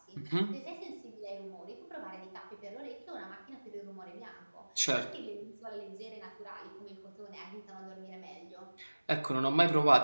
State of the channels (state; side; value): inverted; both; correlation -1.00